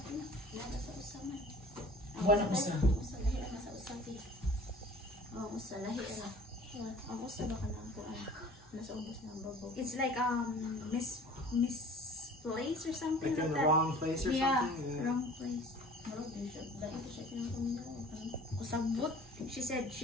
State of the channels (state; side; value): normal; both; correlation 0.46